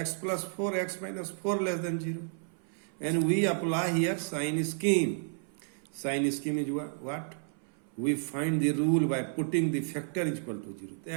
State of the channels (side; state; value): left; silent; 57 dB below the other